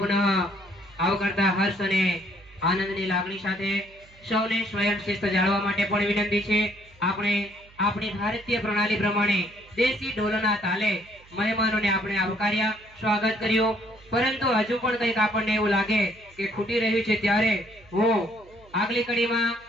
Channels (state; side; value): noise; right; hum, 26 dB below the sound